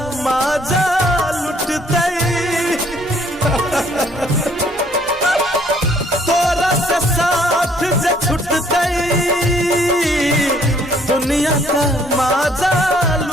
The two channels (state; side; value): normal; both; correlation 0.62